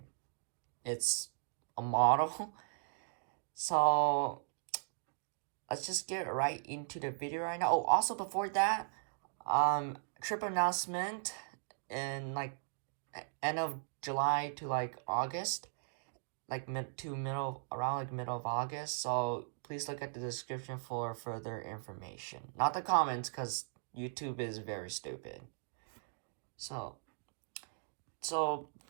it's a model. So let's just get right into the video right now. Oh, also before that, trip announcement in like end of July to like August, like middle of August. So please look at the description for further information. Not the comments, because YouTube is very stupid. So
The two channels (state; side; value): silent; left; digital silence